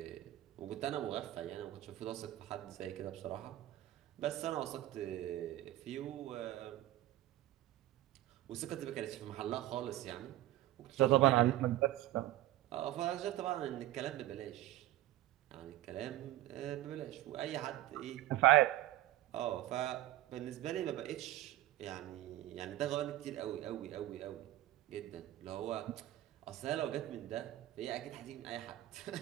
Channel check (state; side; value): quieter; left; 15.3 dB